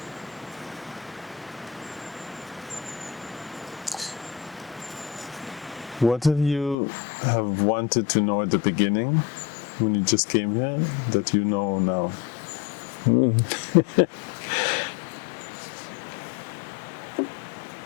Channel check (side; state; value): right; drops out; at 6.8 s